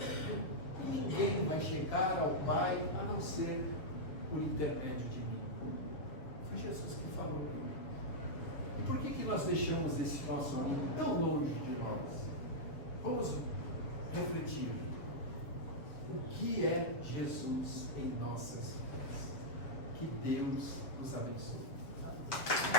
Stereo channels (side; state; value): right; late; 7.1 ms